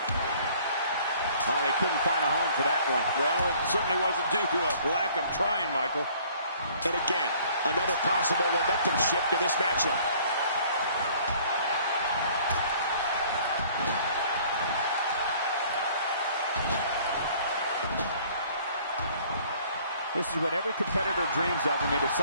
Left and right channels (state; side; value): inverted; both; correlation -0.56